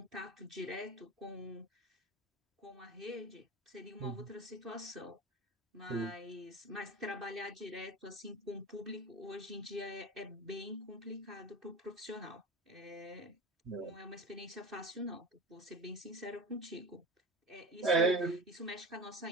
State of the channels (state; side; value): normal; both; correlation 0.31